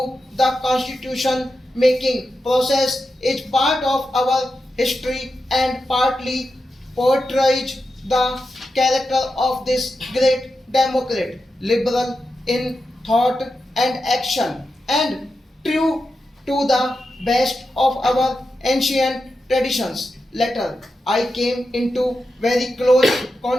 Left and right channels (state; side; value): normal; both; correlation 0.89